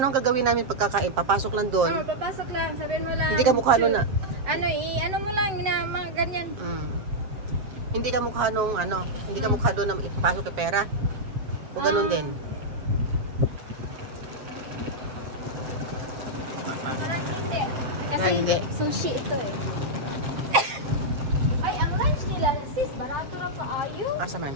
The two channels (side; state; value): left; late; 7.6 ms